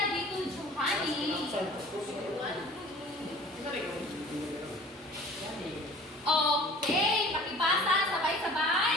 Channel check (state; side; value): normal; both; correlation 0.46